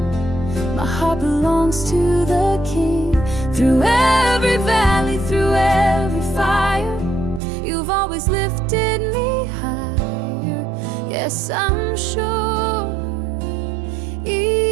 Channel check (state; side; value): drops out; left; at 7.4 s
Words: My heart belongs to the King. Through every valley, through every fire, you've always lifted me higher. Yes, I'm sure,